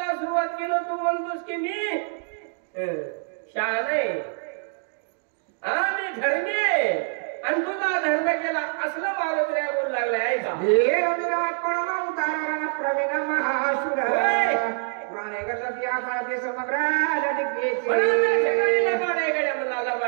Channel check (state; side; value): silent; left; 60 dB below the other